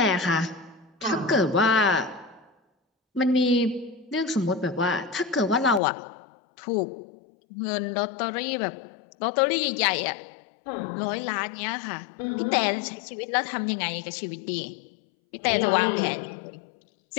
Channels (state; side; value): drops out; right; at 5.8 s